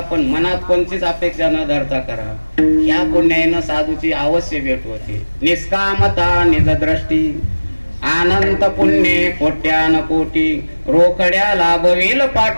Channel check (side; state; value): both; inverted; correlation -1.00